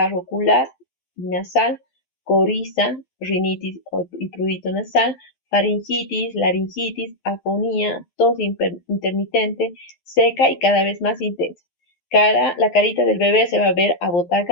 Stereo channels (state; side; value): late; right; 12 ms